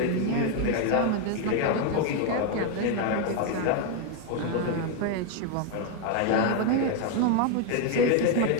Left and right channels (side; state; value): both; different; correlation 0.01